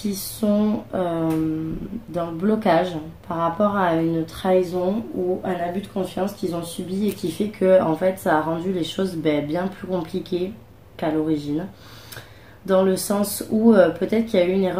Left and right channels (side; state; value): both; identical; correlation 1.00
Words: sont dans le blocage par rapport à une trahison ou un abus de confiance qu'ils ont subi et qui fait que en fait ça a rendu les choses bien plus compliquées qu'à l'origine. Dans le sens où peut-être qu'il y a eu une